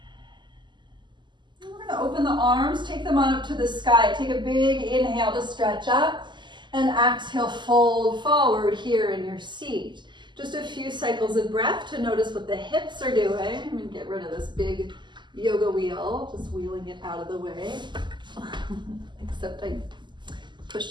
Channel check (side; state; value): left; late; 0.22 ms